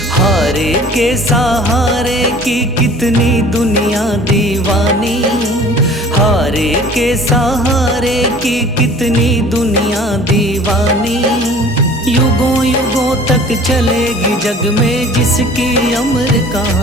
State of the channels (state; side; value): normal; both; correlation 0.48